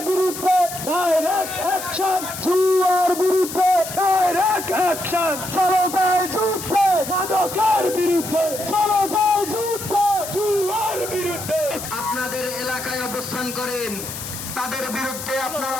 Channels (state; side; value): noise; left; hiss, 9 dB below the sound